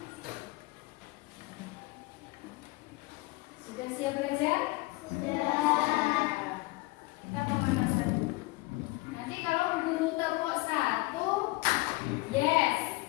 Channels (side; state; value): right; quieter; 22.8 dB